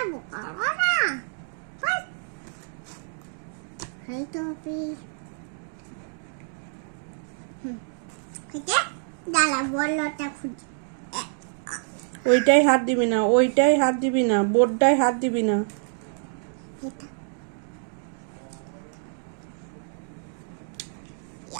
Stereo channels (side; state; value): left; silent; digital silence